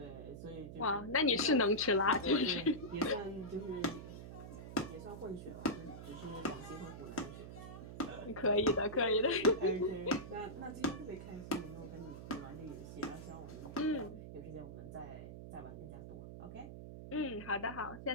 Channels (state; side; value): noise; right; hum, 11 dB below the sound